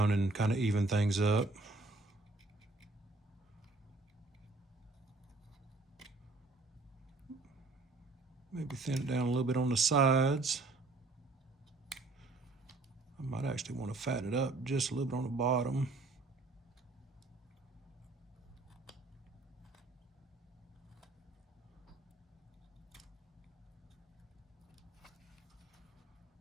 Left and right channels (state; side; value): quieter; left; 3.2 dB